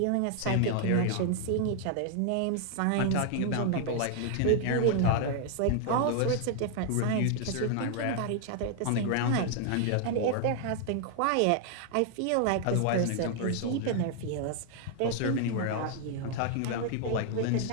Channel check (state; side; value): different; both; correlation 0.00